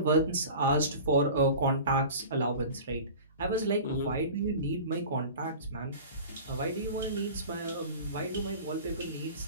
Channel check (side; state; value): both; inverted; correlation -0.37